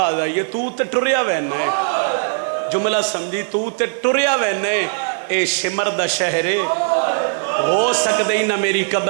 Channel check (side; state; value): left; silent; digital silence